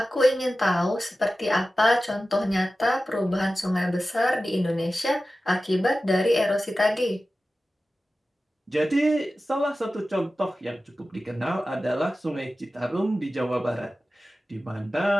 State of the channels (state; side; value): normal; both; correlation 0.95